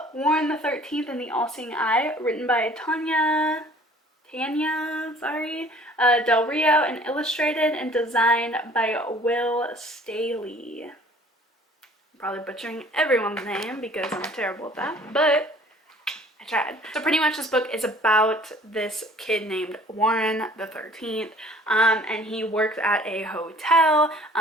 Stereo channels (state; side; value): normal; both; correlation 0.52